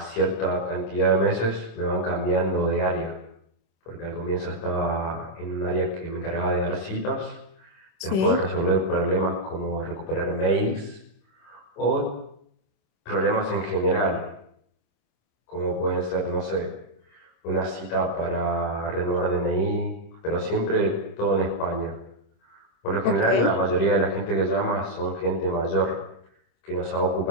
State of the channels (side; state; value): right; late; 26 ms